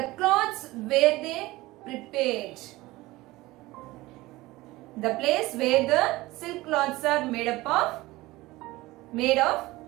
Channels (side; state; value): left; quieter; 19.3 dB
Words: cloths where they prepared. The place where the silk cloths are made of,